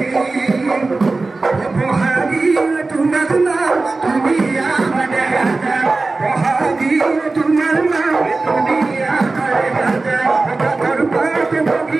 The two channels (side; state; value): left; quieter; 3.5 dB